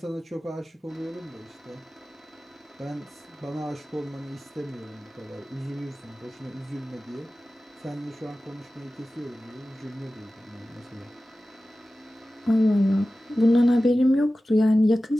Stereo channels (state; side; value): normal; both; correlation 0.95